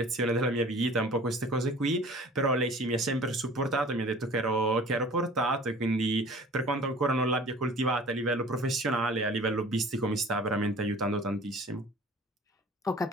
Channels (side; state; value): both; normal; correlation 0.46